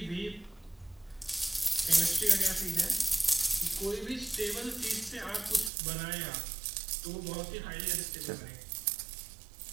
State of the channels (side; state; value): left; drops out; at 5.7 s